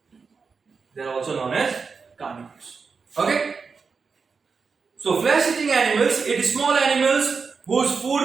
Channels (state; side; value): quieter; left; 5.1 dB